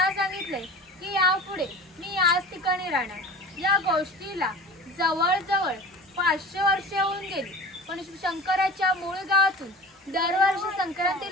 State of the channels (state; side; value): normal; both; correlation 0.37